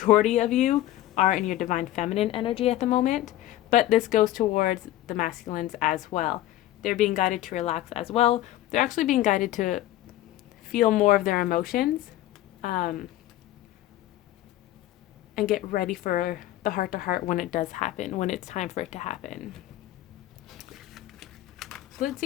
of you are in your divine feminine energy at the moment, but this goes towards the masculines as well. They're being guided to relax as well. They're actually being guided to feel more of their emotions and get ready for the heart-to-heart when it does happen, when it's time for it to happen. So let's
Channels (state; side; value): quieter; right; 14.6 dB